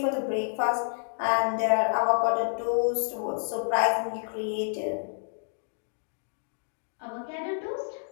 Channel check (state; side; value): silent; right; digital silence